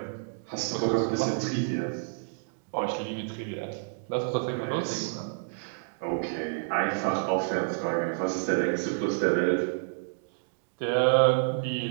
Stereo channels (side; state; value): left; silent; digital silence